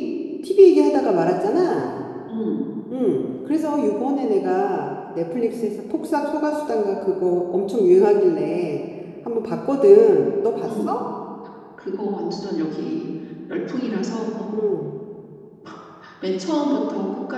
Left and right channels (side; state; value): both; identical; correlation 1.00